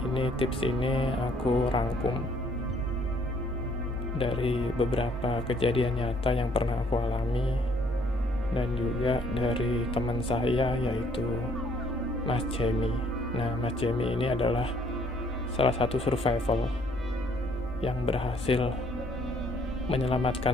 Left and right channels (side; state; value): both; normal; correlation 0.64